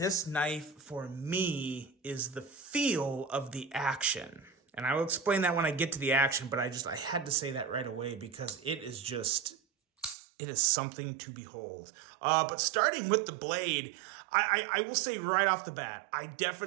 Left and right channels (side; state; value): left; drops out; at 10.2 s